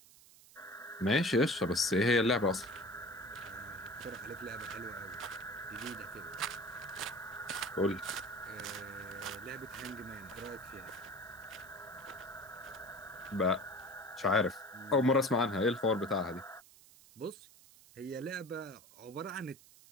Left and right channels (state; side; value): noise; right; hiss, 23 dB below the sound